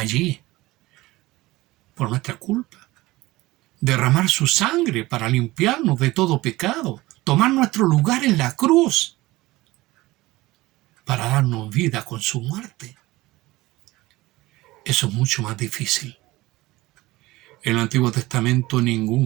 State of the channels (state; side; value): quieter; left; 19.2 dB